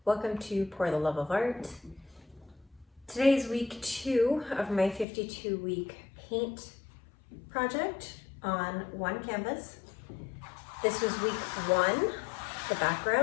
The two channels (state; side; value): drops out; right; at 5.1 s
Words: welcome to Pour the Love of Art. Today is week 2 of my 52-week paint project on one canvas. This was week 1, the